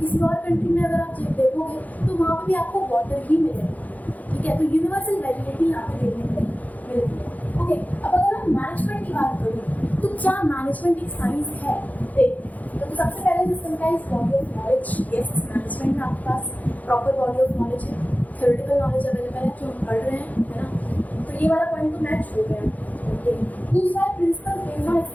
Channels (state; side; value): late; right; 0.078 ms